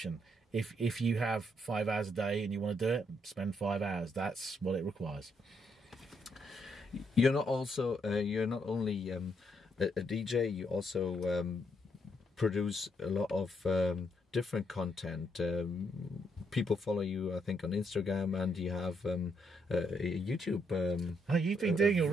If you have 5 hours a day and you want to do it, spend 5 hours. That's what it requires. You're not only a DJ. You also produce a lot of different content. People follow you, I think, on Instagram, and you have a YouTube. You've been doing your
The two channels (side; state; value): both; normal; correlation 0.75